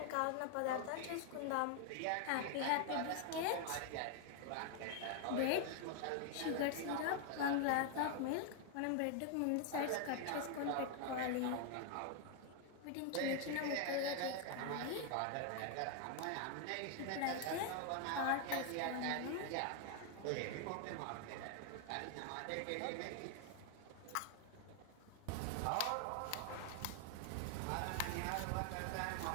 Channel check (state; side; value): different; both; correlation 0.00